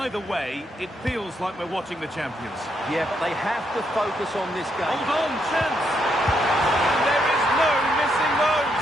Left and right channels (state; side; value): normal; both; correlation 0.77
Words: way, it feels like we're watching the champions. Yeah, but they have to focus on this game. Hold on, chance! And there is no missing those.